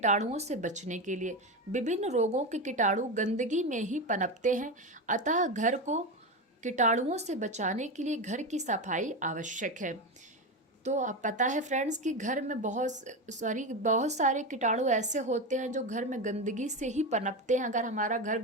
से बचने के लिए। विभिन्न रोगों के कीटाणु गंदगी में ही पनपते हैं, अतः घर को कीटाणुओं से बचाने के लिए घर की सफाई आवश्यक है। तो अब पता है फ्रेंड्स कि घर में बहुत सारे कीटाणु ऐसे होते हैं जो घर में गंदगी से ही पनपते हैं। अगर हमारा घर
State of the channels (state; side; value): normal; both; correlation 0.17